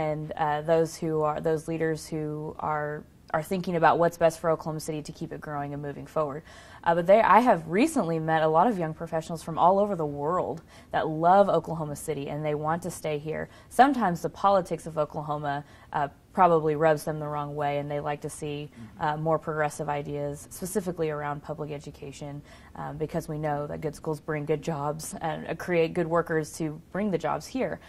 those leaders who are thinking about what's best for Oklahoma City to keep it growing and moving forward. I have recently met a lot of young professionals from all over the world that love Oklahoma City and they want to stay here. Sometimes the politics of Oklahoma probably rubs them the wrong way, and they like to see more progressive ideas, specifically around public education, because we know that good schools bring good jobs and create good workers to bring the jobs here.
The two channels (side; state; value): both; identical; correlation 1.00